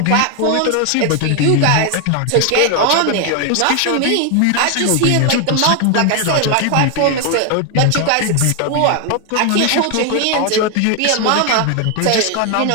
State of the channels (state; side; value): different; both; correlation 0.01